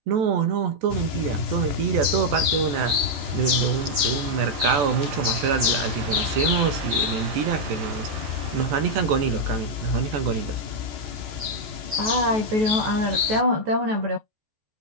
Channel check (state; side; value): late; left; 14 ms